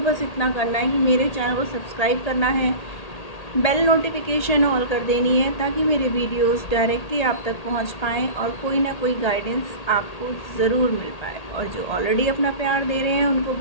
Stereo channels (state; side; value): late; right; 1.8 ms